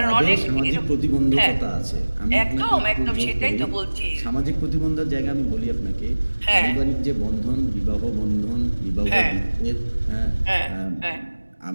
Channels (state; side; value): inverted; both; correlation -1.00